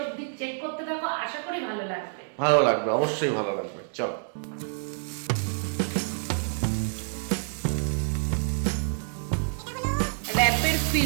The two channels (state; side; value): silent; left; digital silence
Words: অবধি চেক করতে থাকো, আশা করি ভালো লাগবে। ভালো লাগবে, অবশ্যই ভালো লাগবে। চলো। র‍্যাপের